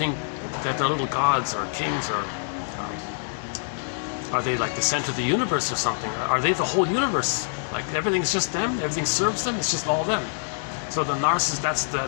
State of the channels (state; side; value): silent; right; digital silence